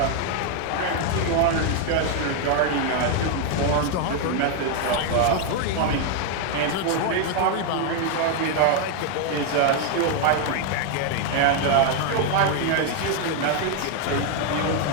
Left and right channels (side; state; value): both; different; correlation 0.01